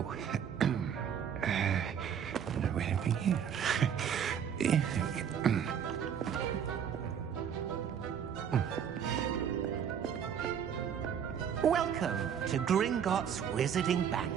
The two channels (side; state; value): left; quieter; 8.2 dB